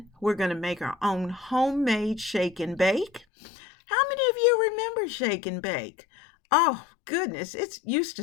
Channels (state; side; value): drops out; right; at 3.2 s